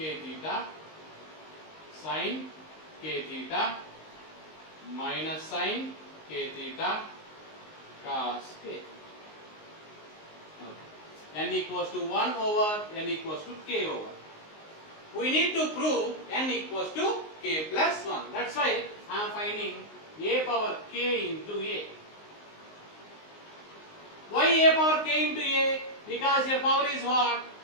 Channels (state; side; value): late; right; 19 ms